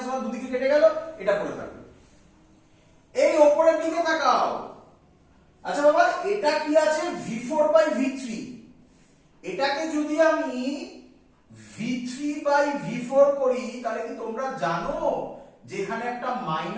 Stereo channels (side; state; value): both; identical; correlation 1.00